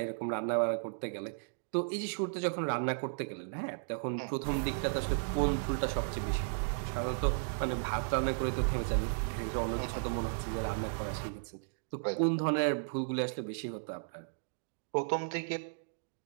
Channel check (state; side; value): silent; left; digital silence